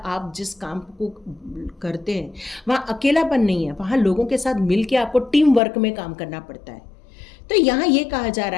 जिस काम को करते हैं वहाँ अकेलापन नहीं है, वहाँ लोगों के साथ मिल के आपको टीम वर्क में काम करना पड़ता है। तो यहाँ ये कहा जा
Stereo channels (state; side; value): drops out; right; at 5.6 s